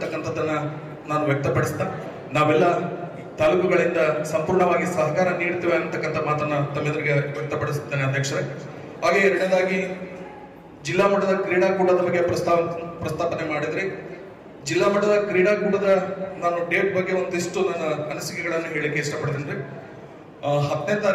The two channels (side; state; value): both; identical; correlation 1.00